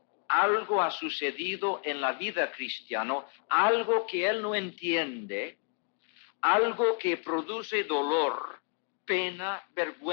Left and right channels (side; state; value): right; quieter; 37.9 dB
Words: algo ha sucedido en la vida cristiana, algo que él no entiende, algo que produce dolor, pena,